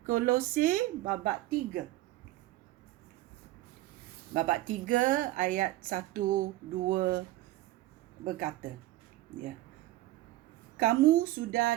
Kolose babak 3. Babak 3 ayat 1-2 berkata, kamu sudah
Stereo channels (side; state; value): left; quieter; 16.6 dB